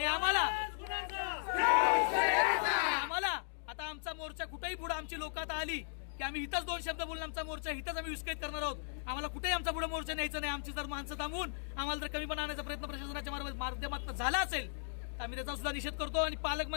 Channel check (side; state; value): right; silent; digital silence